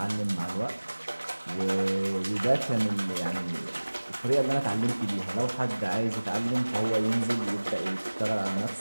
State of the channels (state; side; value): inverted; both; correlation -1.00